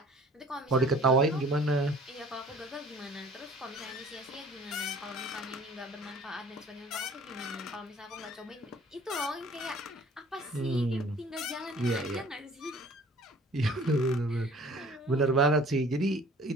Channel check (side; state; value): both; normal; correlation 0.50